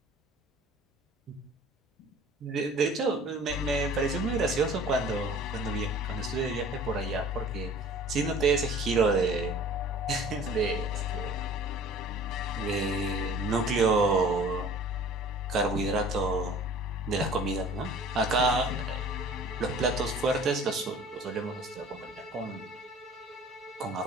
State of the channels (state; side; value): normal; both; correlation 0.47